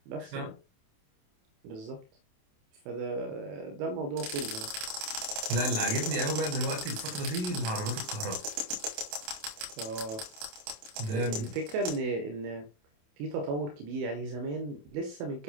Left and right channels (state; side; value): late; left; 28 ms